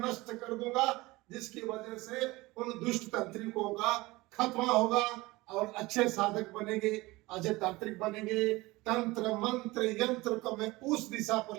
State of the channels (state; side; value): quieter; left; 21.0 dB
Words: नष्ट कर दूंगा, जिसकी वजह से उन दुष्ट तांत्रिकों का खात्मा होगा और अच्छे साधक बनेंगे, अच्छे तांत्रिक बनेंगे। तंत्र मंत्र यंत्र को मैं उस दिशा पर